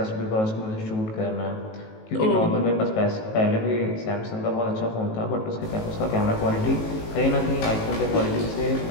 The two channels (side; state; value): right; late; 18 ms